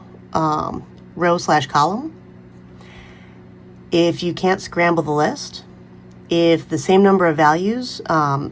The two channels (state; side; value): identical; both; correlation 1.00